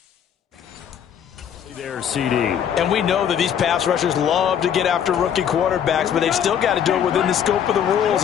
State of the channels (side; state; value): right; quieter; 8.8 dB